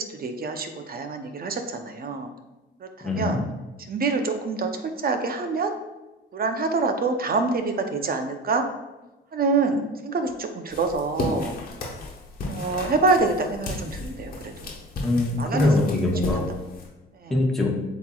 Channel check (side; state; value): both; normal; correlation 0.36